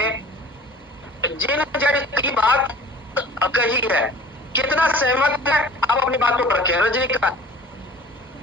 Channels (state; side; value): normal; both; correlation 0.46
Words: जिन जज की बात कही है, कितना सहमत है आप अपनी बातों पर रखें। रजनीकांत,